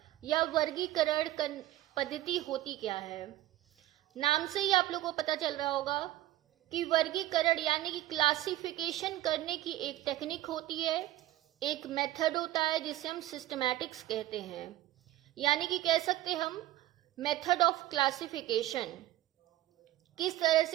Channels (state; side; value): quieter; left; 15.0 dB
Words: या वर्गीकरण पद्धति होती क्या है? नाम से ही आप लोगों को पता चल रहा होगा कि वर्गीकरण यानी कि क्लासिफिकेशन करने की एक टेक्निक होती है, एक मेथड होता है जिसे हम सिस्टमैटिक्स कहते हैं। यानी कि कह सकते हम मेथड ऑफ क्लासिफिकेशन, किस तरह